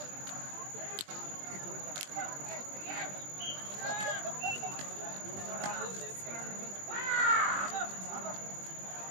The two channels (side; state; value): left; late; 20 ms